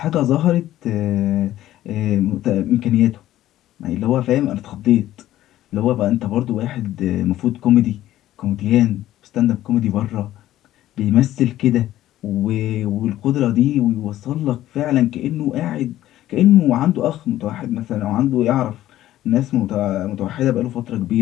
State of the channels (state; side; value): quieter; right; 13.9 dB